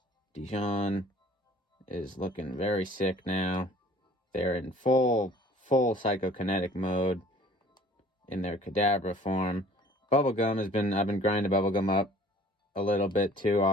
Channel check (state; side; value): normal; both; correlation 0.50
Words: Dijon is looking very sick now. They're in full psychokinetic mode in their Kadabra form. I've been grinding Bubblegum up a little bit too